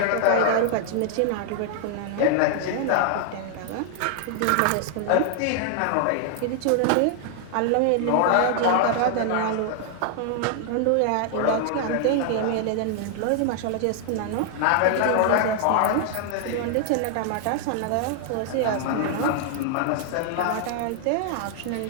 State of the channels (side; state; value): both; different; correlation 0.00